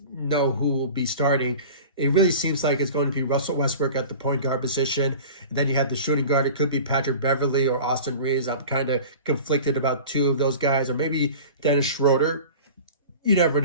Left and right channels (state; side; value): inverted; both; correlation -0.37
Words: know who will be starting, it really seems like it's going to be Russell Westbrook at the point guard position. And then you have the shooting guard. It could be Patrick Beverley or Austin Reaves. I'm kind of conflicted about two of those guys, or maybe Dennis Schroder. You never